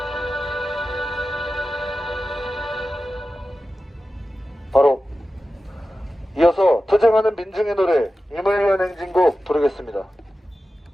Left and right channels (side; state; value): both; normal; correlation 0.94